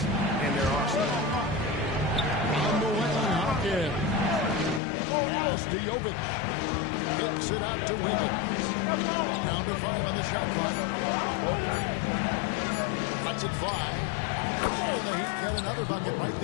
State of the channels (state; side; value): drops out; right; at 4.8 s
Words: in their arsenal. On the way, Hawkins. Pass to Jovic. Kicks it out to Wiggins. Down to 5 on the shot clock. Cuts it 5. And the Heat got another bucket right